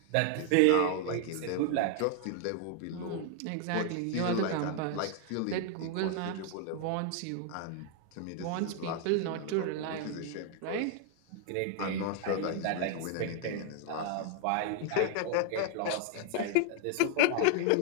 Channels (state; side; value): different; both; correlation 0.00